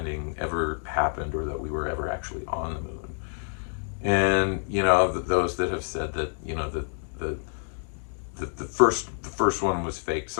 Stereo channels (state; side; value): silent; right; 60 dB below the other